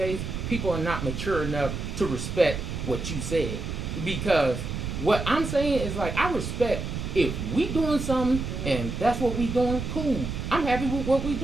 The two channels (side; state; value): right; noise; rumble, 5 dB below the sound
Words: people are not mature enough to respect what you said. Because what I'm saying is like I respect if we doing something and that's what we doing, cool. I'm happy with what we